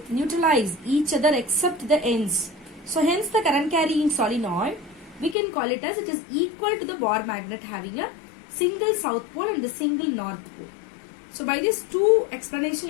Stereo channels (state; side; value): drops out; right; at 5.4 s